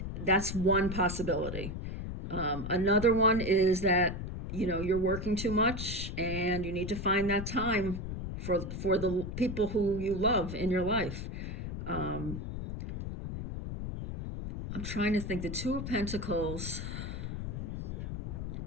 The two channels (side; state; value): left; noise; rumble, 6 dB below the sound